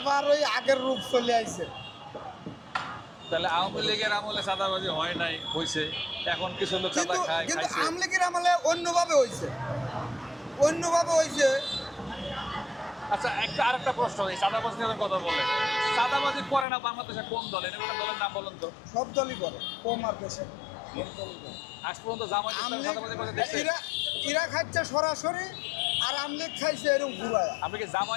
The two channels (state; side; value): drops out; right; at 16.7 s